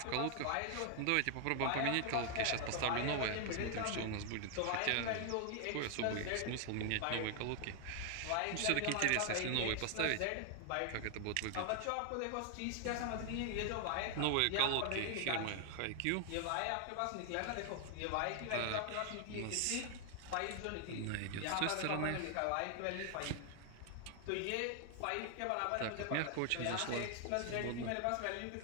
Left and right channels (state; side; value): different; both; correlation 0.00